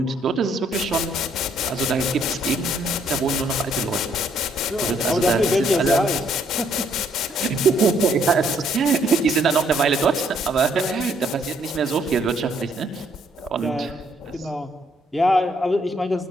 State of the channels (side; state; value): both; normal; correlation 0.68